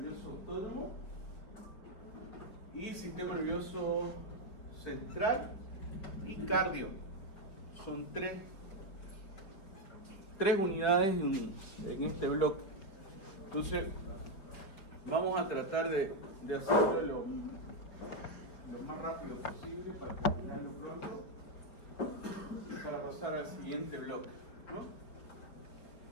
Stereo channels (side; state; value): right; late; 5.1 ms